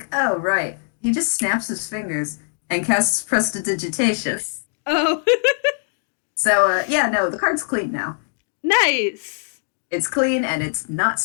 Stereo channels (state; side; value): silent; right; digital silence